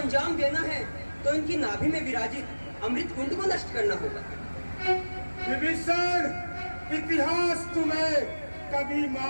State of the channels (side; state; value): both; inverted; correlation -1.00